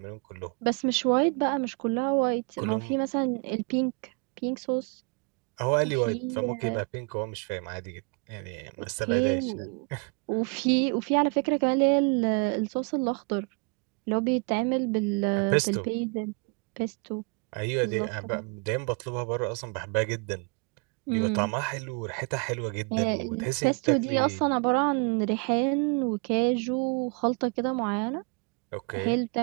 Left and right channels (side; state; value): left; quieter; 34.1 dB